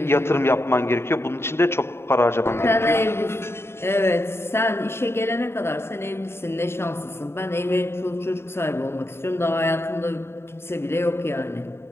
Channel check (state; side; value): late; right; 0.12 ms